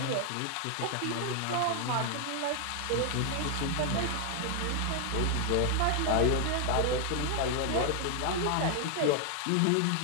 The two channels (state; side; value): different; both; correlation 0.00